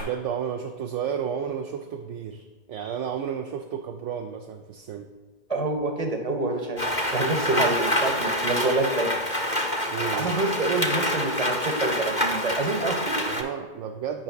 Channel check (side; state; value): right; late; 2.1 ms